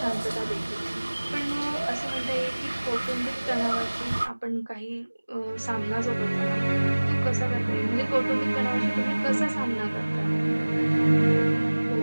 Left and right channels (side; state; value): both; inverted; correlation -1.00